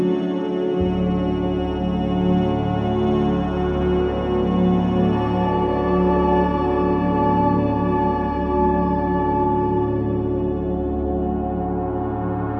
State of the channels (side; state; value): both; identical; correlation 1.00